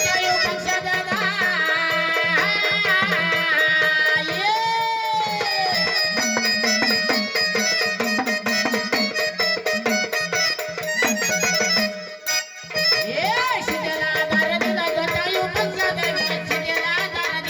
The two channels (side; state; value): both; identical; correlation 1.00